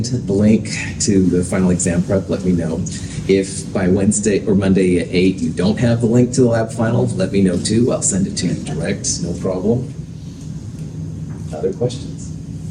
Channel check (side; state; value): both; identical; correlation 1.00